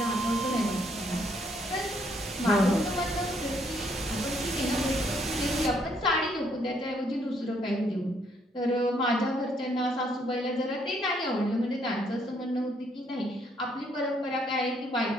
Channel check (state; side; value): normal; both; correlation 0.69